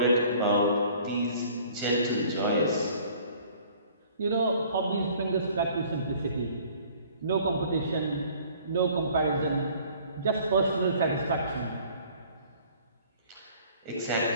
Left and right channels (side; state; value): both; inverted; correlation -0.53